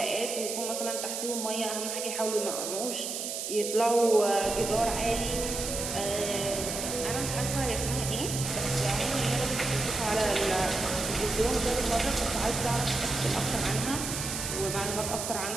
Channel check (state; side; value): noise; right; hiss, 4 dB below the sound